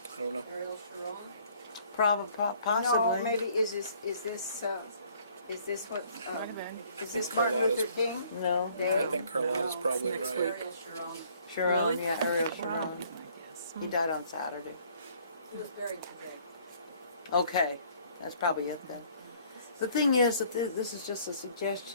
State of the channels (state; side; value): inverted; both; correlation -0.60